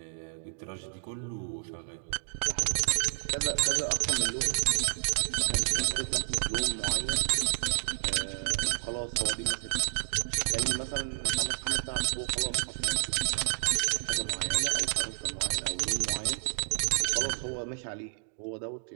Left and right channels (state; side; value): silent; left; digital silence